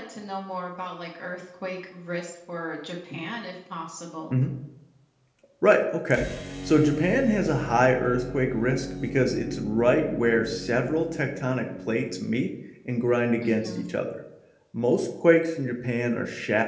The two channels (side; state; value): both; identical; correlation 1.00